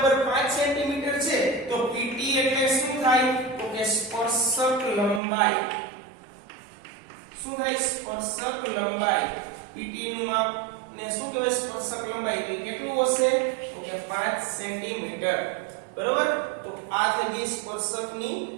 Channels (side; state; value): left; drops out; at 5.2 s